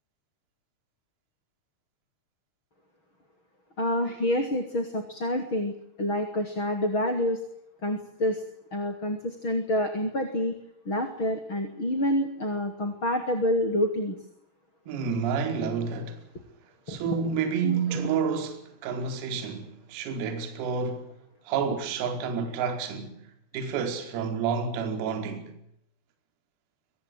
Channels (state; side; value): late; right; 6.4 ms